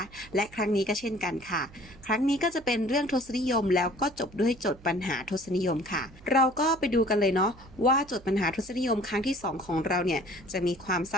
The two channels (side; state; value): right; noise; hum, 22 dB below the sound